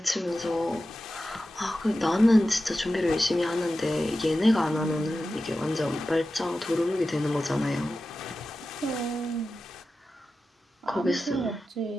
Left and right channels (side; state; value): both; normal; correlation 0.93